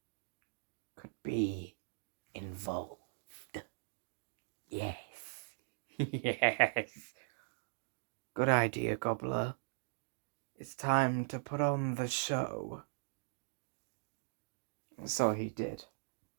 could be involved. Yes. Yes. Good idea, Gobbler. It's time to put on the show. And so he did.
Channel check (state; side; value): silent; left; digital silence